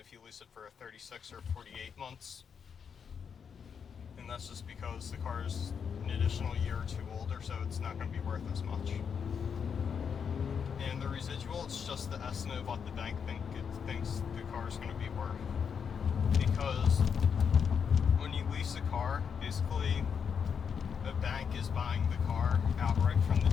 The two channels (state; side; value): quieter; right; 6.8 dB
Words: if you lease it for 36 or 48 months. And that's just because the car is an additional year or two older, so it's not going to be worth as much. And the residual, it's just the estimate of what the bank thinks the car is going to be worth. Because when you lease a car, basically the bank is buying the car outright from the